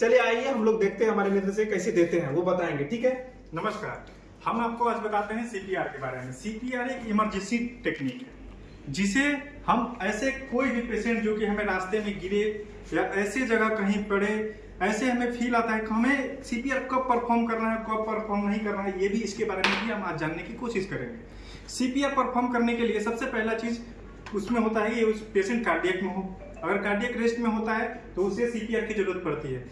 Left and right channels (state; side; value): identical; both; correlation 1.00